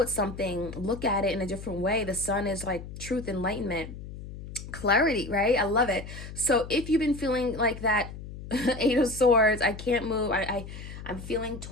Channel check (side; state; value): left; noise; hum, 12 dB below the sound